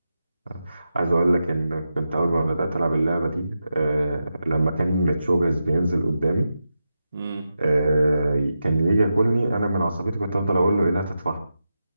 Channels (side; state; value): both; inverted; correlation -0.89